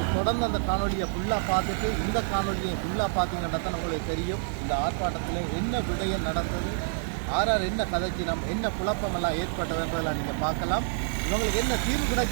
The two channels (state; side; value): silent; left; digital silence